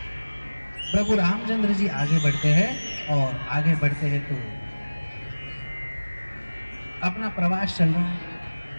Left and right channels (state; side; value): inverted; both; correlation -1.00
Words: प्रभु रामचंद्र जी आगे बढ़ते हैं और आगे बढ़ते हैं तो अपना प्रवास चल रहा है